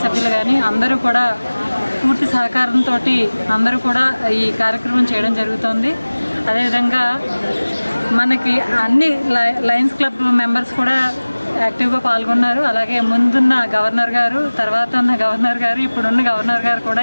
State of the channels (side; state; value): both; inverted; correlation -1.00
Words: సభ్యులు కానీ అందరూ కూడా పూర్తి సహకారంతో అందరూ కూడా ఈ కార్యక్రమం చేయడం జరుగుతుంది. అదేవిధంగా మనకి అన్ని లయన్స్ క్లబ్ మెంబర్స్ కూడా యాక్టివ్గా పాల్గొన్నారు. అలాగే ముందున్న గవర్నర్ గారు, తర్వాత ఉన్న గవర్నర్ గారు, ఇప్పుడున్న గవర్నర్ గారు కూడా